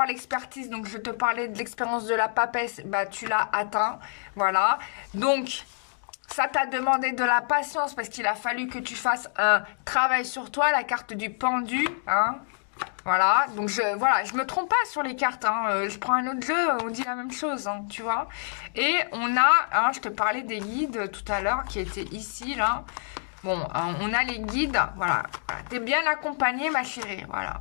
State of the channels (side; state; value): right; silent; digital silence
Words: l'expertise, donc je te parlais de l'expérience de la papesse, bah tu l'as atteint, voilà. Donc ça t'a demandé de la patience parce qu'il a fallu que tu fasses un travail sur toi, la carte du pendu, hein. Voilà, donc je me trompe pas sur les cartes, hein. Je prends un autre jeu, on dit la même chose, hein, tu vois. Et on a, hein, je te parlais des guides tout à l'heure qui étaient ici, là. Bon, on a les guides, voilà. T'es bien accompagnée, ma chérie, voilà,